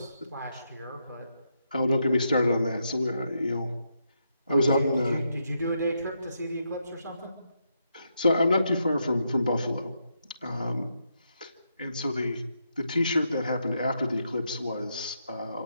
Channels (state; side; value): inverted; both; correlation -0.81